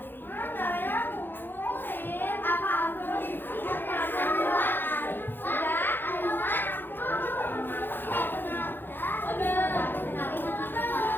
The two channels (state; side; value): late; right; 0.098 ms